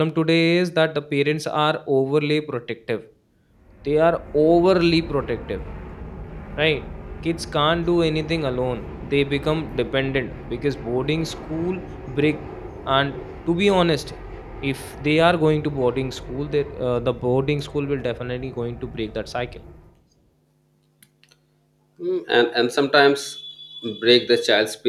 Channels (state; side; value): identical; both; correlation 1.00